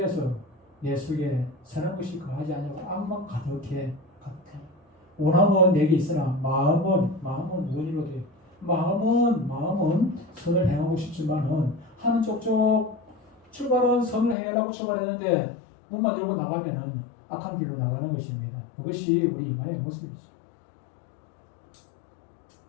선한 것이 거하지 아니하고 악만 가득해. 원함은 내게 있으나 마음은 원이로 돼. 마음은 선을 행하고 싶지만은 하는 쪽쪽 출발은 선을 행하려고 출발했는데 문만 열고 나가면은 악한 길로 나가는 것입니다. 그것이 우리 인간의 모습이죠.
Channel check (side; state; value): right; drops out; at 14.4 s